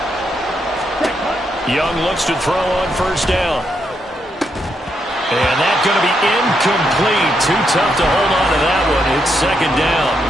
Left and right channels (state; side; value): normal; both; correlation 0.79